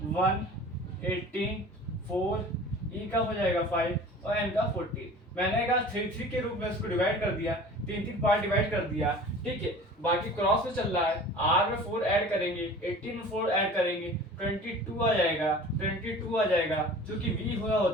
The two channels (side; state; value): both; normal; correlation 0.42